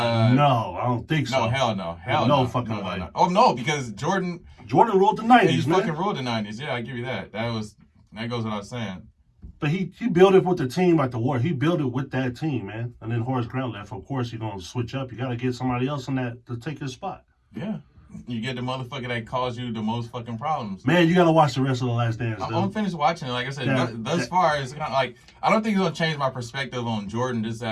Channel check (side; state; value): both; identical; correlation 1.00